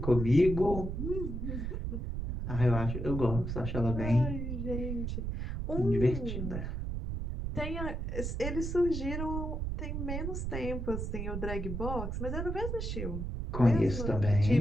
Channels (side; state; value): right; noise; rumble, 3 dB below the sound